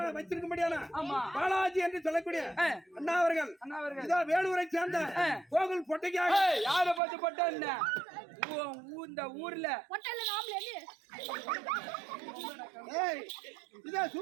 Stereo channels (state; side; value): drops out; left; at 7.0 s